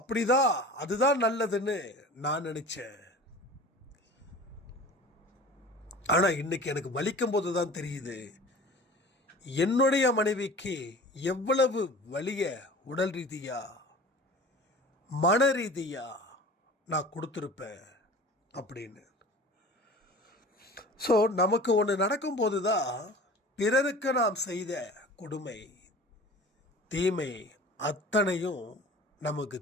அதுதான் நல்லதுன்னு நான் நினச்சேன். ஆனால் இன்னைக்கு எனக்கு வலிக்கும் போது தான் தெரியுது, என்னுடைய மனைவிக்கு எவ்வளவு வலிய உடல் ரீதியா மன ரீதியா நான் கொடுத்துருப்பேன் அப்படின்னு. ஸோ நமக்கு ஒன்று நடக்கும்போது தான் பிறருக்கு நாம் செய்த கொடுமை தீமை அத்தனையும் நமக்கு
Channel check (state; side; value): normal; both; correlation 0.40